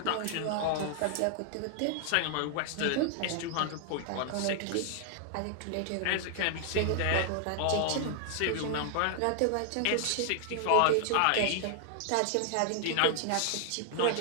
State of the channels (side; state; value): both; different; correlation 0.00